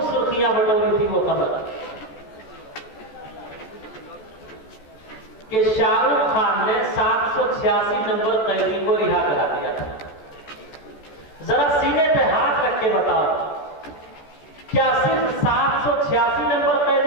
सुर्खियां बटोरी थी वो खबर कि शाहरुख खान ने 786 नंबर कैदी को रिहा करा दिया था। जरा सीने पे हाथ रख के बताओ, क्या सिर्फ 786 नंबर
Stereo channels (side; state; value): right; late; 14 ms